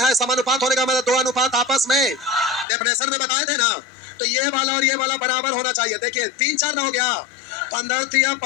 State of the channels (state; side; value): drops out; right; at 2.7 s